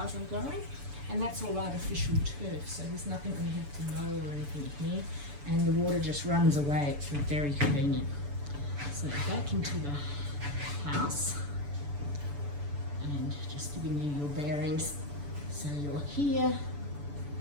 I'm growing. And that's all artificial turf, so there's nothing we have to mow or anything here. And the water just runs away, it's very convenient. So back into the house, and just giving you your bearings. So you're here,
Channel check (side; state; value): left; late; 6.9 ms